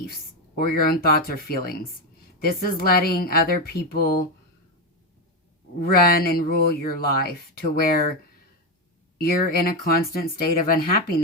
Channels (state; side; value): normal; both; correlation 0.09